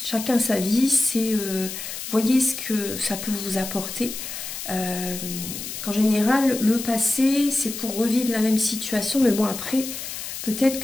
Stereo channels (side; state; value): left; noise; hiss, 8 dB below the sound